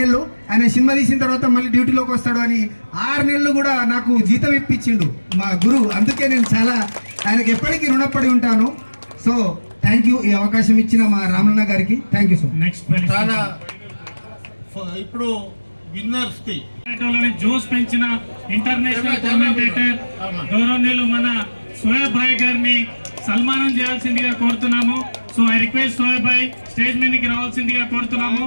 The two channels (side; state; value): both; inverted; correlation -1.00